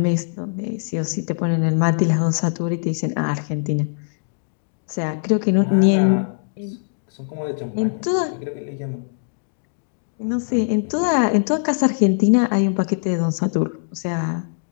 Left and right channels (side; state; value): right; silent; digital silence